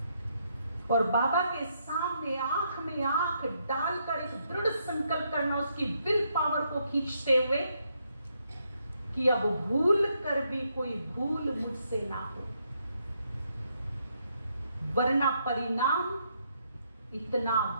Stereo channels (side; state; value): both; inverted; correlation -0.76